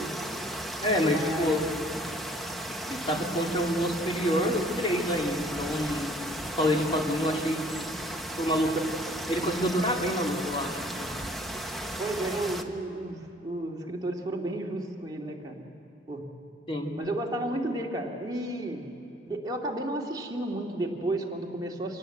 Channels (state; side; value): normal; both; correlation 0.57